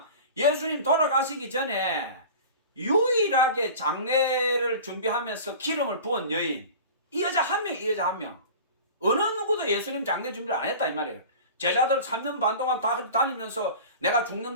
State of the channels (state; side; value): inverted; both; correlation -0.37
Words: 예수님 돌아가시기 전에 유일하게 장례를 준비하면서 기름을 부은 여인. 이 여자 한 명, 이 여자 한 명. 어느 누구도 예수님 장례 준비를 안 했다 이 말이에요. 제자들 3년 반 동안 다 다니면서 내가